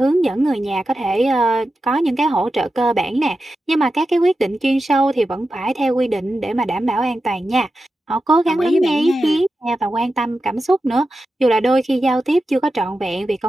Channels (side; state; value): both; normal; correlation 0.91